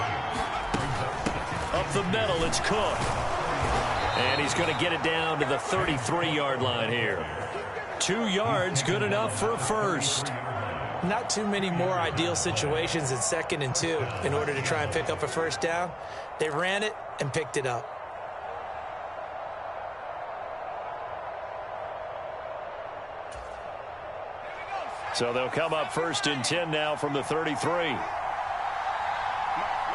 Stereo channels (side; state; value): both; identical; correlation 1.00